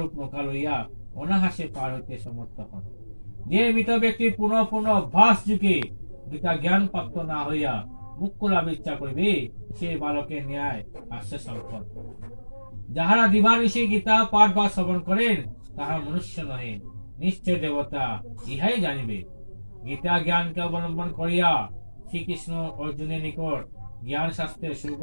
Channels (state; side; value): inverted; both; correlation -1.00